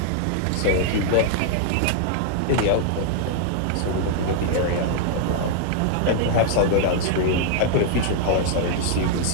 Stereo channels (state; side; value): different; both; correlation 0.00